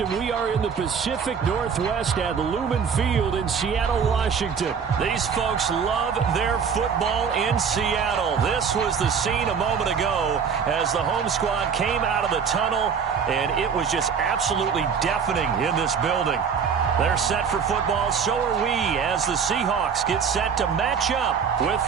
we are in the Pacific Northwest at Lumen Field in Seattle, Washington. These folks love their football in Seattle. This was the scene a moment ago as the home squad came out of the tunnel, and it was just absolutely deafening in this building. They're set for football, so are we, as the Seahawks get set to match up with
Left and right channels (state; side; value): quieter; left; 6.6 dB